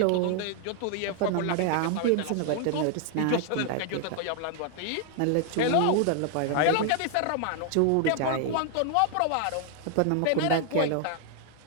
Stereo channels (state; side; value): different; both; correlation 0.00